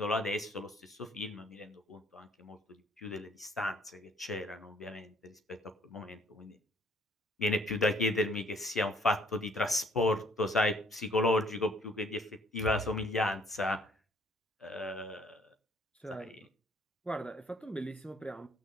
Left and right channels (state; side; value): normal; both; correlation 0.61